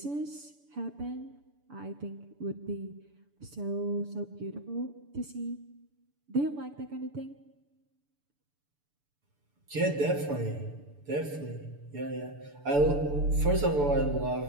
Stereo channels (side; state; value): left; late; 6.9 ms